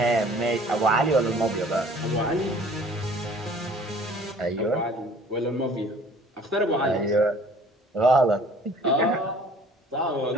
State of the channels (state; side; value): normal; both; correlation 0.51